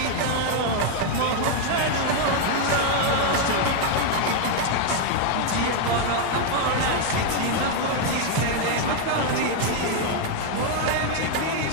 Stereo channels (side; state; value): both; different; correlation 0.00